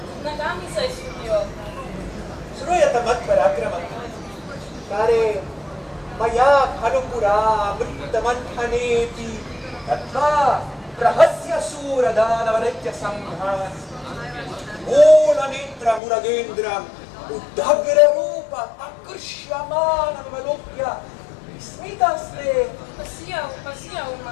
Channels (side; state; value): right; drops out; at 16.0 s